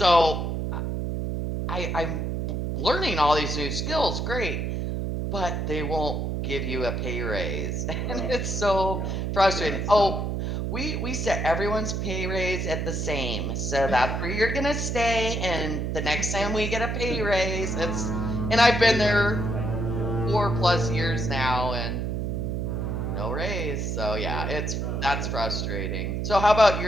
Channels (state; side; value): noise; right; hum, 1 dB below the sound